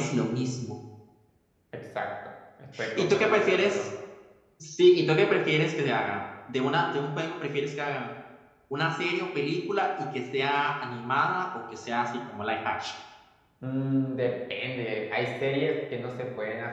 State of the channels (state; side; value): identical; both; correlation 1.00